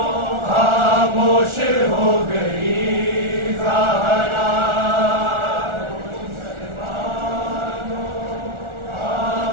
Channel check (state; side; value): late; left; 1.4 ms